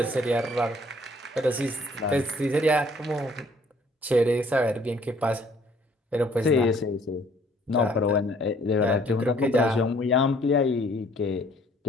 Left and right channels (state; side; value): normal; both; correlation 0.60